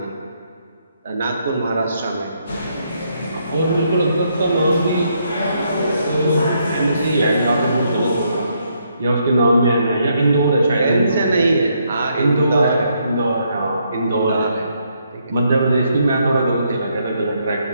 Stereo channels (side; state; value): both; inverted; correlation -0.75